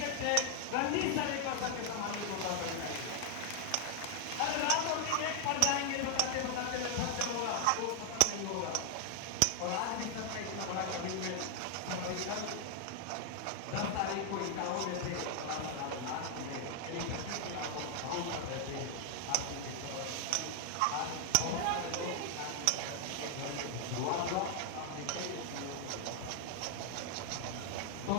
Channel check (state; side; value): different; both; correlation 0.00